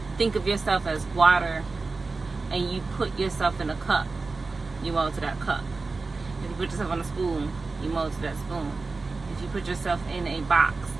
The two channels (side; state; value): left; quieter; 3.9 dB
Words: think of yourself as water and you put yourself in a cup, you mold to that cup. If you put yourself on a spoon, you mold to that spoon. If you put yourself in a box,